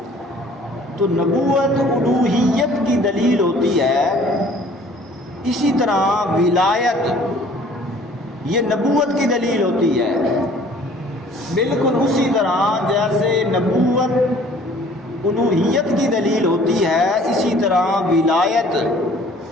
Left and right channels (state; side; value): normal; both; correlation 0.53